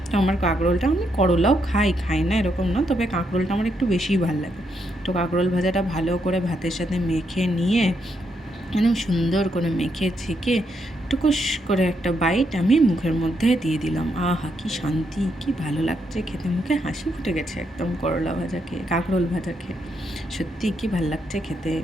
তো আমার কাঁকরোলটা, আমি করলাও খাই না এরকম না, তবে কাঁকরোলটা আমার একটু বেশিই ভালো লাগে। তো কাঁকরোল ভাজাটা ভালো করে ভাতের সাথে মেখে নিয়ে একদম সুন্দর করে মেখে ছেঁকে টুকুস করে একটা বাইট আমি মুখের মধ্যে দিয়ে দিলাম। আহা, কি শান্তি, কি ভালো লাগছে খেতে, মুখে হাসি ফুটে গেছে একদম করলা ভাজা খেয়ে, কাঁকরোল ভাজা খেয়ে। সত্যি কি ভালো লাগছে খেতে।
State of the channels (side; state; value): both; normal; correlation 0.78